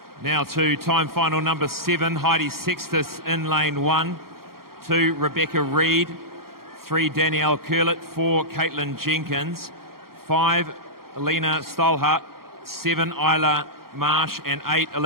Now to time final number 7, Heidi Sextus in lane 1. 2, Rebecca Reid. 3, Danielle Curlett. 4, Caitlin Jenkins. 5, Alina Stolhart. 7, Isla Marsh. And 8,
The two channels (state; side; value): late; left; 0.93 ms